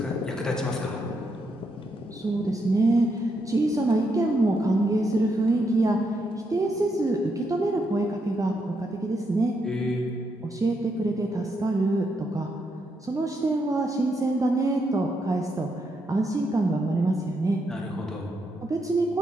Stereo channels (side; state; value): both; normal; correlation 0.80